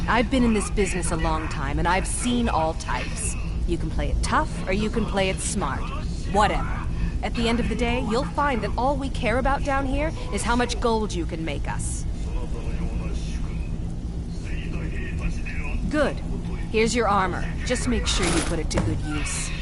I've been in this business a long time, and I've seen all types. You can play it tough, or you can play it smart. Whatever. At the end of the day, you'll find that all we care about down here is how much gold you can make us. Good. Here's your armor. Just make sure you put it to good use.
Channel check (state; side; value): identical; both; correlation 1.00